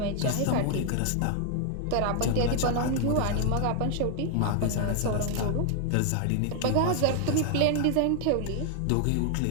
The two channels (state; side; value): different; both; correlation 0.00